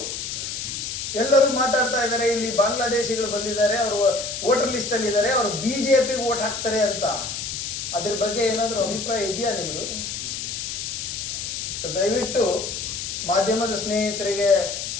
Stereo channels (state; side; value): noise; left; hiss, 5 dB below the sound